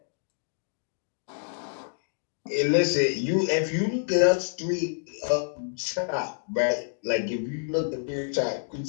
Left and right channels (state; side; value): silent; right; digital silence